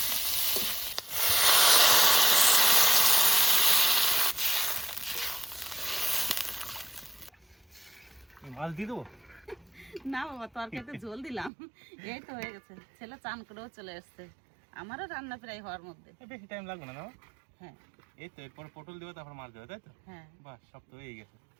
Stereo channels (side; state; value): left; drops out; at 11.5 s